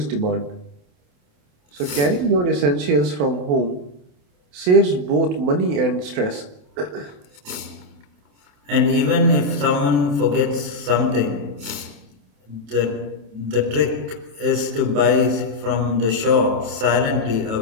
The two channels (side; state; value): left; late; 28 ms